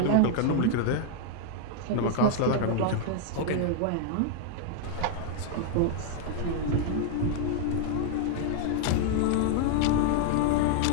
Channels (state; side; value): different; both; correlation 0.00